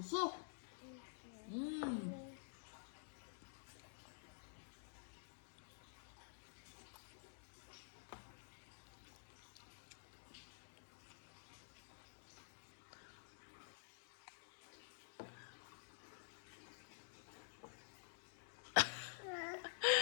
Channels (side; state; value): right; silent; digital silence